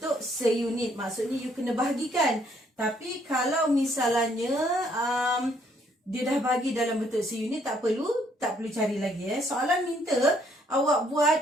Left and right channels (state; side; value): normal; both; correlation 0.67